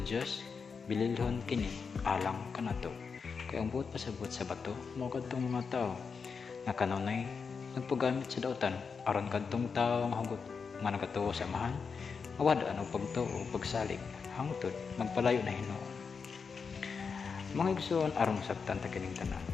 Dios, bililhon kini alang kanato. Kaya ang buot pasabot sa bato, mao kadtong mga tao nga kanunay nagpagamit sa dautan aron kadtong tao nga hugot nga nagatuo sa amahan, mawada og pagtuo o pagsalig hangtod magpalayo na Ginoo. Mga igsoon aron sabtan ta kining tanan.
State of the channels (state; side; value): quieter; right; 5.5 dB